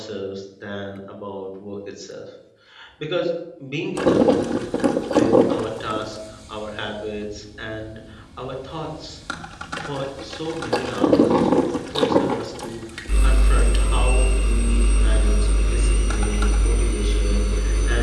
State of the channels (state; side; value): identical; both; correlation 1.00